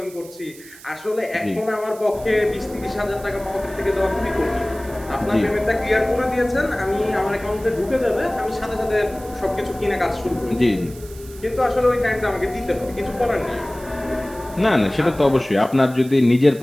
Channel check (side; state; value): right; noise; hiss, 20 dB below the sound